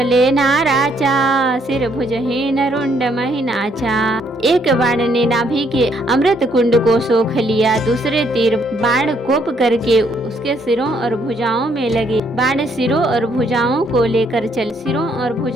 नाराचा, सिर भुजहीन रुंड महिनाचा। एक बाण ने नाभि के अमृत कुंड को सोख लिया, दूसरे तीर बाण कोप करके उसके सिरों और भुजाओं में लगे। बाण सिरों और भुजाओं को लेकर चल, सिरों और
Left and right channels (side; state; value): both; normal; correlation 0.70